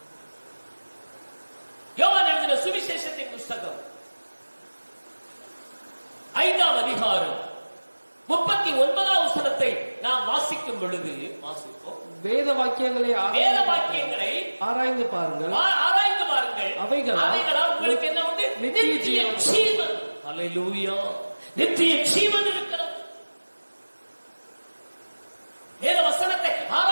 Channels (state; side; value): inverted; both; correlation -1.00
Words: யோவான் எழுதின சுவிசேஷத்தின் புஸ்தகம் 5ஆம் அதிகாரம் 39ஆம் வசனத்தை நாம் வாசிக்கும் பொழுது, வாசிப்போம். வேத வாக்கியங்களை ஆராய்ந்து பாருங்கள். அவைகளால் உங்களுக்கு என்ன உண்டு? நித்திய ஜீவன். அல்லேலூயா. நித்திய ஜீவன் இருக்கிறது. வேத வசனத்தை